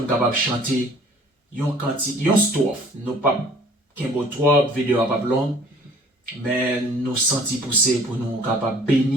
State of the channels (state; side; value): normal; both; correlation 0.53